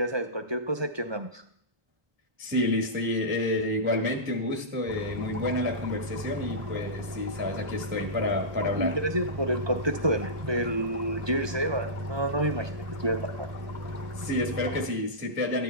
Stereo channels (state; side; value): late; left; 1.2 ms